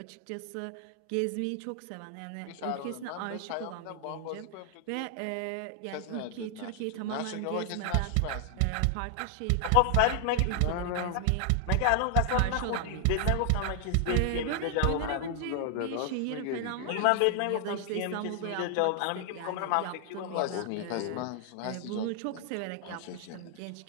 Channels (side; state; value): both; different; correlation 0.00